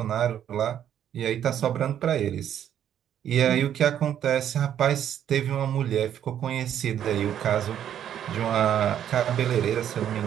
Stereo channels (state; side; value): quieter; left; 10.0 dB